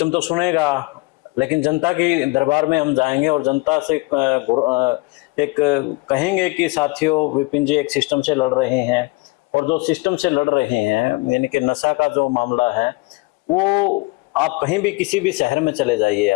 तो सुनेगा, लेकिन जनता की दरबार में हम जाएंगे और जनता से एक कहेंगे कि साथियों विपिन जी एक सिस्टम से लड़ रहे हैं, और जो सिस्टम से लड़ रहे हैं यानी कि नशा का जो मामला है, वो आप कहीं भी किसी भी शहर में चले जाइए,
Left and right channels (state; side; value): quieter; right; 25.0 dB